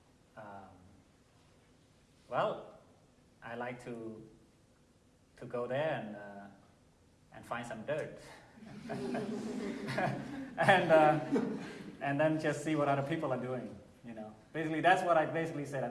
well, I like to go there and find some dirt. And then just see what other people are doing, Basically, that's what I basically said. I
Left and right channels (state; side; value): identical; both; correlation 1.00